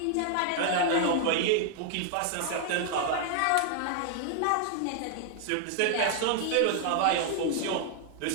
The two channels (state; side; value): different; both; correlation 0.00